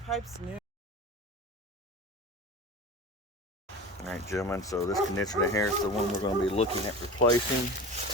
pipe's new. All right, gentlemen, so this condenser in here is the one we're going to be looking at replacing.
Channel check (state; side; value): normal; both; correlation 0.33